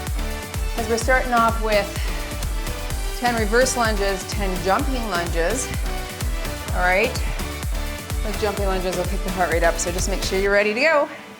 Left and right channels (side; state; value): both; identical; correlation 1.00